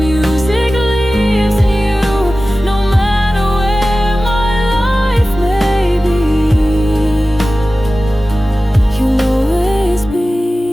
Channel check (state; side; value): normal; both; correlation 0.96